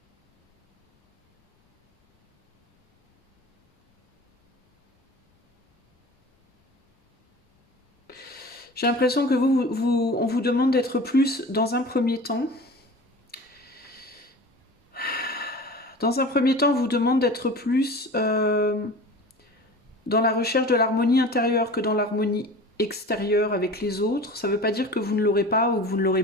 J'ai l'impression que on vous demande d'être plus dans un premier temps. Dans un premier temps, on vous demande d'être plus dans la recherche de l'harmonie intérieure que dans l'harmonie extérieure avec les autres. Ça ne veut pas dire que vous ne l'aurez pas ou que vous ne l'aurez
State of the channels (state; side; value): normal; both; correlation 0.37